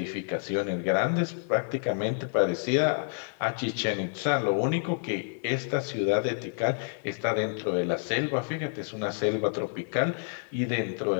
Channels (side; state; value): right; silent; 56 dB below the other